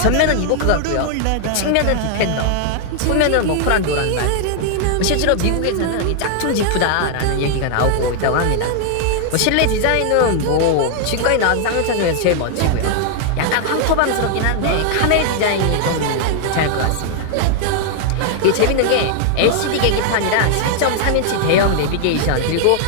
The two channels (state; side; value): different; both; correlation 0.00